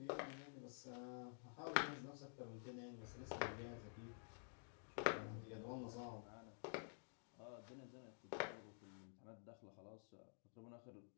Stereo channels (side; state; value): right; silent; digital silence